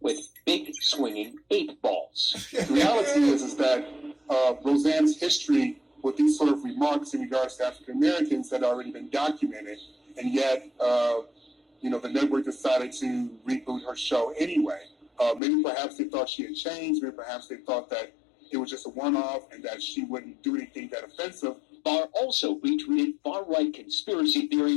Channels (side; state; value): right; drops out; at 15.4 s